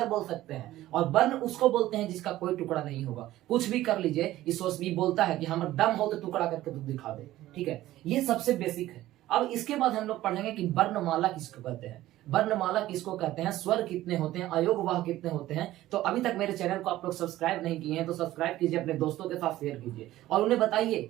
बोल सकते हैं। और वर्ण उसको बोलते हैं जिसका कोई टुकड़ा नहीं होगा। कुछ भी कर लीजिए, ईश्वर भी बोलता है कि हमारा दम हो तो टुकड़ा करके तू दिखा दे। ठीक है, ये सबसे बेसिक है। अब इसके बाद हम लोग पढ़ेंगे कि वर्णमाला किसको कहते हैं। वर्णमाला किसको कहते हैं, स्वर कितने होते हैं, अयोगवाह कितने होते हैं। तो अभी तक मेरे चैनल को आप लोग सब्सक्राइब नहीं किए हैं तो सब्सक्राइब कीजिए, अपने दोस्तों के साथ शेयर कीजिए और उन्हें बताइए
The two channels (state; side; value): quieter; left; 15.2 dB